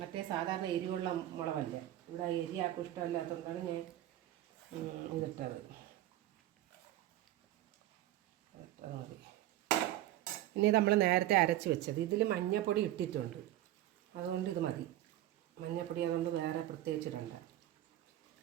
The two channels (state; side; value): quieter; left; 13.9 dB